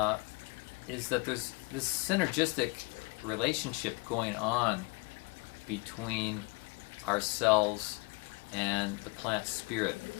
is that there's this synergistic relationship going on between ourselves and the plant spirit,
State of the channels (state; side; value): quieter; right; 27.5 dB